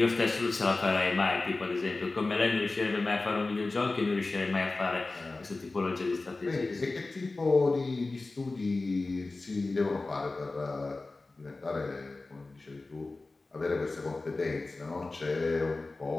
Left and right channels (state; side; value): quieter; right; 3.4 dB